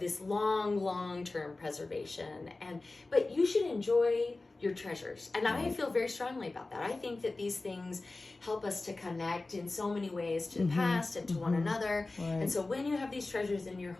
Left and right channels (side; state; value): right; quieter; 3.2 dB